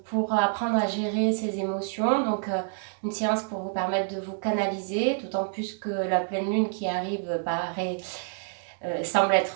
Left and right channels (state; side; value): silent; left; digital silence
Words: pour apprendre à gérer ses émotions. Donc, une séance pour vous permettre de vous canaliser, d'autant plus que la pleine lune qui arrive semble